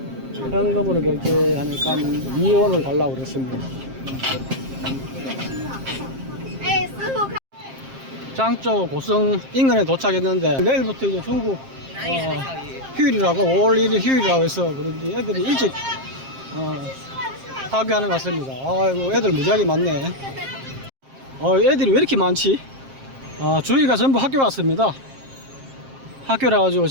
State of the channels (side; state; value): left; late; 7.5 ms